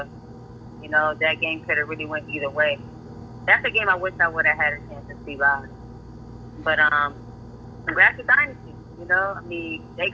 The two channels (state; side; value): identical; both; correlation 1.00